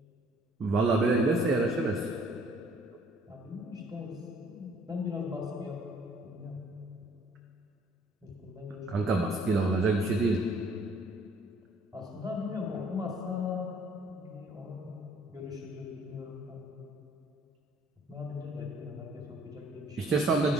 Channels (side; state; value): both; normal; correlation 0.59